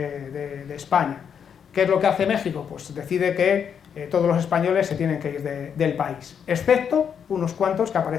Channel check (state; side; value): quieter; right; 7.6 dB